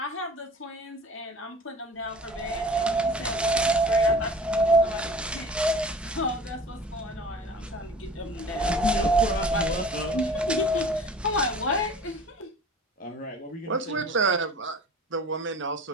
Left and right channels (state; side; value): normal; both; correlation 0.43